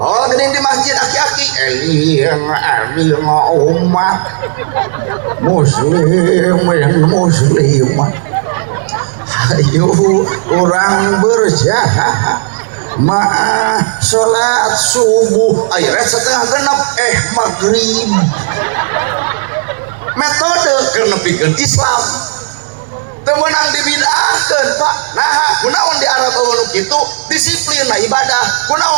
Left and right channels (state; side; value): silent; left; digital silence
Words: geuning di masjid aki-aki umat muslimat ayo orang berjahah maaf salat subuh akhirnya setengah genap maghrib metode kenepikeun Islam temenang dibid'ahkeun Pak nah kunaon di Arab nu kitu disiplin na ibadah